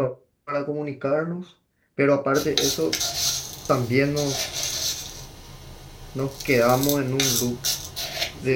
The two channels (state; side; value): identical; both; correlation 1.00